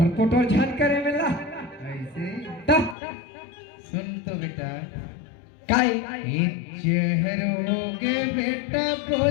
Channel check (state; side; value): drops out; right; at 3.0 s